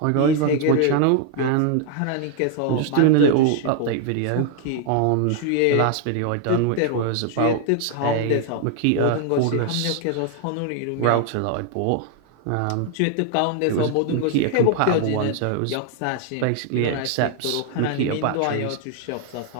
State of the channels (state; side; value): different; both; correlation 0.00